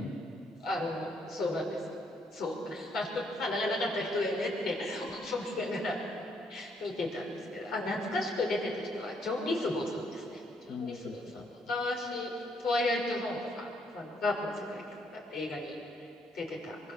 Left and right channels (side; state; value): both; normal; correlation 0.71